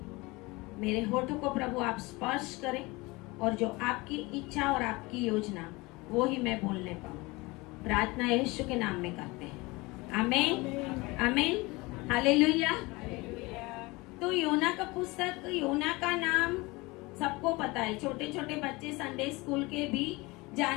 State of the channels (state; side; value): quieter; right; 23.5 dB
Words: मेरे होठों को प्रभु आप स्पर्श करें और जो आपकी इच्छा और आपकी योजना वो ही मैं बोलने पाऊं। प्रार्थना यीशु के नाम में करते हैं। आमीन, आमीन, हालेलुया। तो योना का पुस्तक, योना का नाम सबको पता है। छोटे छोटे बच्चे संडे स्कूल के भी